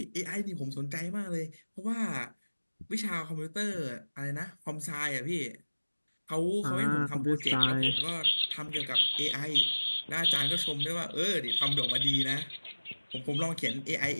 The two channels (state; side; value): inverted; both; correlation -1.00